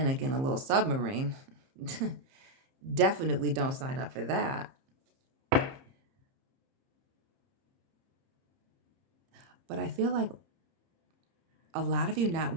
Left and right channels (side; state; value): left; late; 30 ms